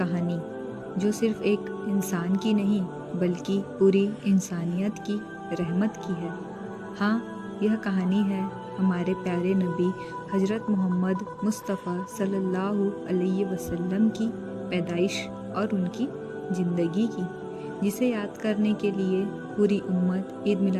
जो सिर्फ एक इंसान की नहीं बल्कि पूरी इंसानियत की रहमत की है। हाँ, यह कहानी है हमारे प्यारे नबी हज़रत मोहम्मद मुस्तफ़ा सल्लल्लाहु अलैहि वसल्लम की पैदाइश और उनकी ज़िंदगी की, जिसे याद करने के लिए पूरी उम्मत ईद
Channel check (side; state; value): both; identical; correlation 1.00